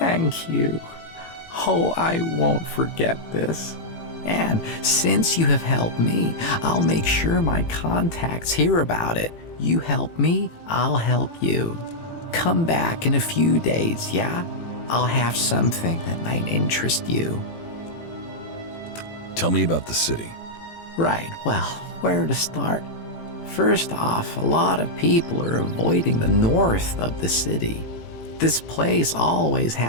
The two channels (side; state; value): right; late; 18 ms